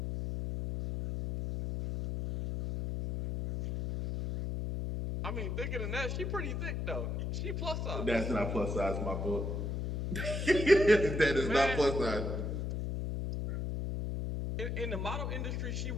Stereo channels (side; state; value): left; noise; hum, 2 dB below the sound